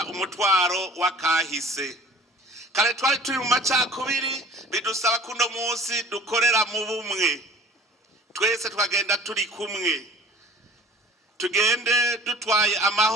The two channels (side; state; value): both; normal; correlation 0.47